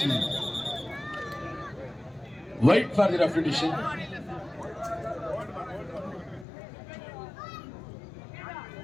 ವೈಟ್ ಫಾರ್ ದಿ ರೆಫ್ರಿಡಿಷನ್.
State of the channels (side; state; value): right; drops out; at 6.5 s